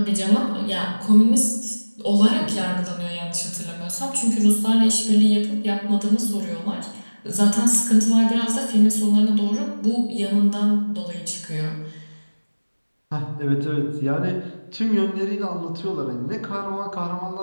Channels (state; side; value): inverted; both; correlation -1.00